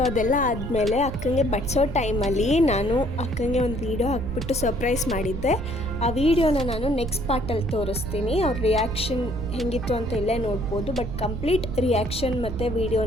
ಅದೆಲ್ಲ ಆದಮೇಲೆ ಅಕ್ಕಂಗೆ ಬಡಿಸೋ ಟೈಮಲ್ಲಿ ನಾನು ಅಕ್ಕಂಗೆ ಒಂದು ವೀಡಿಯೋ ಹಾಕ್ಬಿಟ್ಟು ಸರ್ಪ್ರೈಸ್ ಮಾಡಿದ್ದೆ. ಆ ವಿಡಿಯೋನ ನಾನು ನೆಕ್ಸ್ಟ್ ಪಾರ್ಟಲ್ಲಿ ತೋರಿಸ್ತೀನಿ. ಅವ್ರ ರಿಯಾಕ್ಷನ್ ಹೆಂಗಿತ್ತು ಅಂತ ಇಲ್ಲೇ ನೋಡ್ಬೋದು. ಬಟ್ ಕಂಪ್ಲೀಟ್ ರಿಯಾಕ್ಷನ್ ಮತ್ತು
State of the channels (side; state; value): right; noise; rumble, 6 dB below the sound